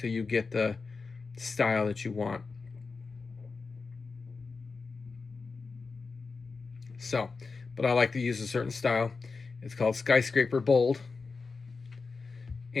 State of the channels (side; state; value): right; quieter; 4.4 dB